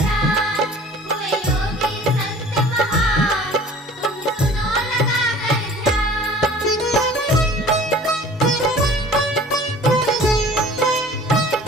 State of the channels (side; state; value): both; normal; correlation 0.47